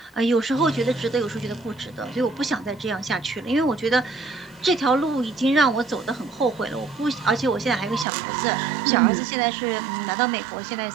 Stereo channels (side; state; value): left; drops out; at 8.1 s